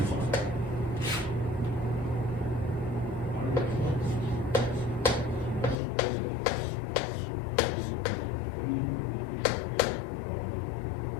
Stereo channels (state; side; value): drops out; right; at 5.8 s